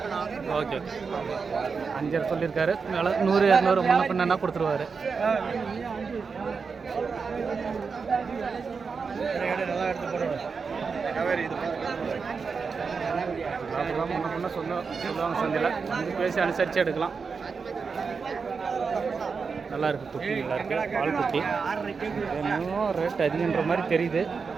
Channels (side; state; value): left; quieter; 5.2 dB